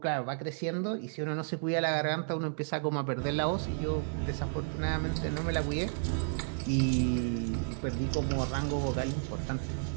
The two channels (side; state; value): left; silent; digital silence